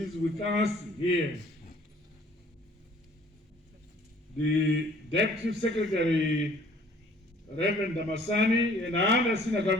with us here, the Deputy Secretary Reverend Damasani, and other senior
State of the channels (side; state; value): both; normal; correlation 0.56